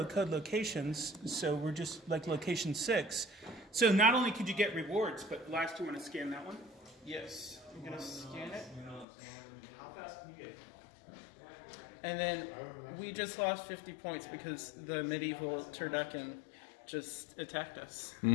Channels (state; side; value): drops out; right; at 9.1 s